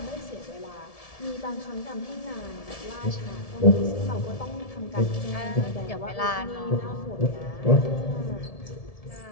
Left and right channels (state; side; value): late; right; 1.7 ms